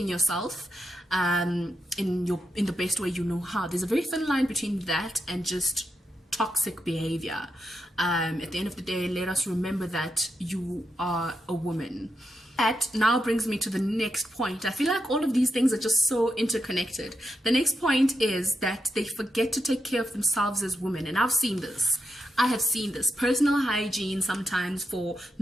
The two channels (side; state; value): both; normal; correlation 0.84